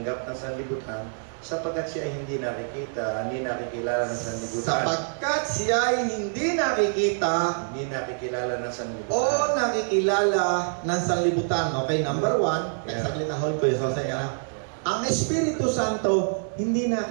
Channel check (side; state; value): left; silent; digital silence